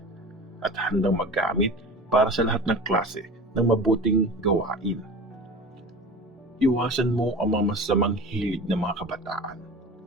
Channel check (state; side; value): normal; both; correlation 0.34